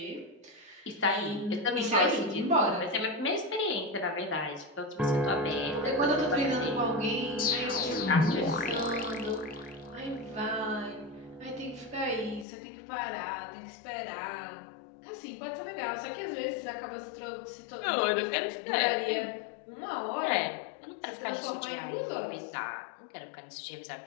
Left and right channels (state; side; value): drops out; right; at 12.5 s